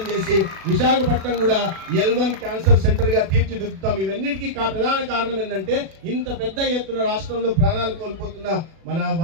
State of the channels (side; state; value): left; late; 36 ms